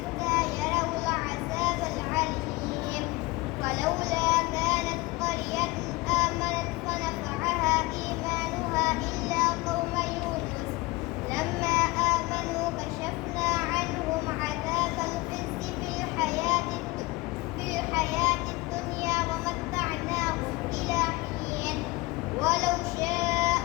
يروا العذاب العليم فلولا كانت قرية آمنت فنفعها إيمانها إلا قوم يونس لما آمنوا كشفنا عنهم عذاب الخزي في الحياة الدنيا ومتعناهم إلى حين ولو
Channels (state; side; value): quieter; right; 22.0 dB